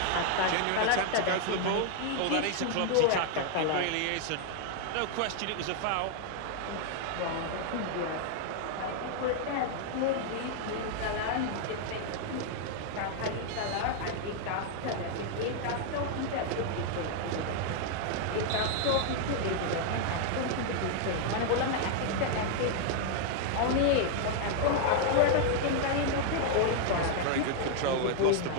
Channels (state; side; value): different; both; correlation 0.00